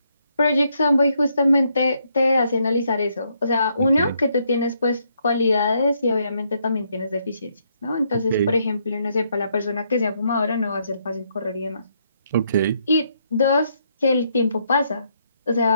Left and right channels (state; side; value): inverted; both; correlation -0.74